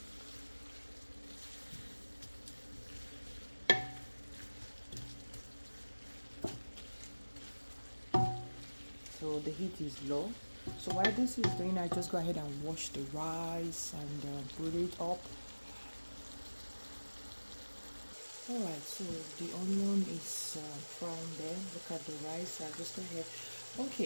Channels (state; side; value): inverted; both; correlation -1.00